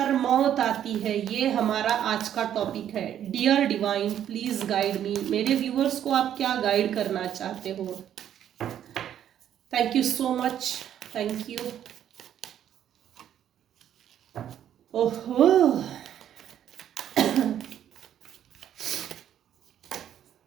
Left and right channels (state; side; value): quieter; left; 10.3 dB